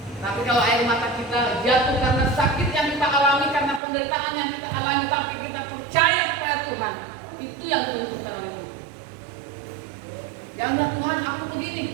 Tapi kalau air mata kita jatuh karena sakit yang kita alami, karena penderitaan yang kita alami, tapi kita percaya kepada Tuhan, itu yang menentukan oleh Tuhan. Jangan Tuhan aku begini,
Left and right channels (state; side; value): drops out; left; at 3.8 s